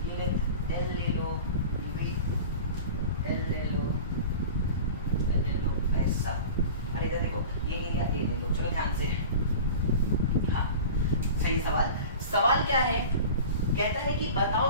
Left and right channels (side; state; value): both; inverted; correlation -0.36